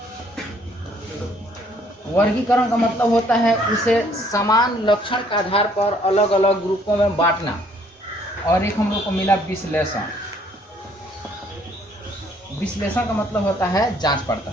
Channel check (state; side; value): normal; both; correlation 0.63